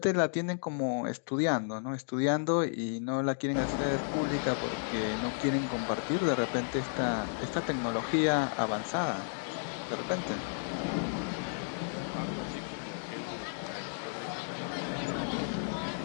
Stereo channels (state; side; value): silent; right; digital silence